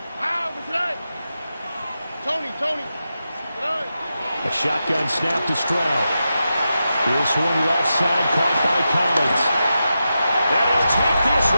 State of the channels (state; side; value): inverted; both; correlation -0.89